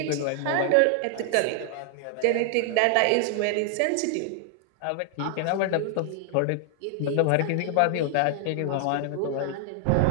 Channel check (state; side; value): different; both; correlation 0.00